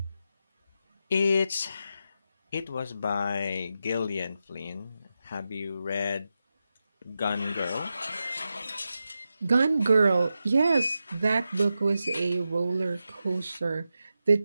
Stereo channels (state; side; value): inverted; both; correlation -0.89